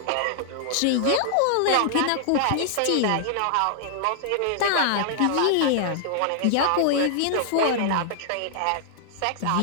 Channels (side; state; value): both; different; correlation -0.01